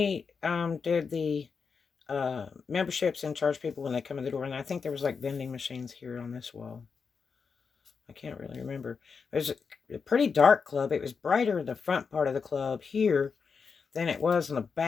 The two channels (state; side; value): quieter; right; 5.5 dB